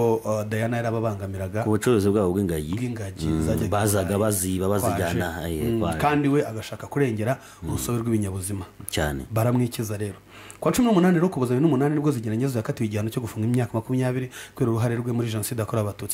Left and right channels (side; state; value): both; identical; correlation 1.00